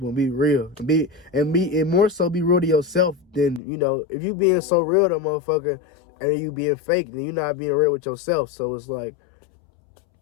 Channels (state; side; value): drops out; right; at 3.6 s